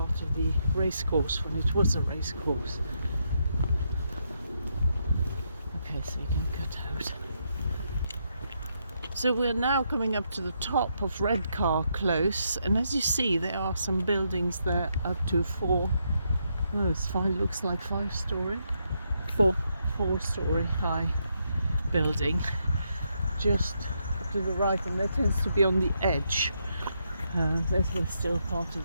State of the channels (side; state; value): both; inverted; correlation -0.79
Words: of the racecourse when it was a racecourse. Okay, so you can cut out. So we're now coming up to the top of Redcar Close, and as you see, there are some buildings there up to looks like 5-story, 4-story high building, just to the right, and that tends to be on the edge. This is still part